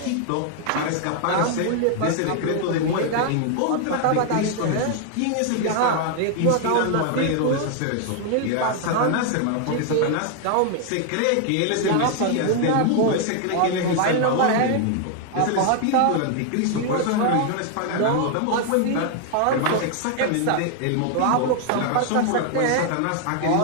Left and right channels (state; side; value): different; both; correlation 0.00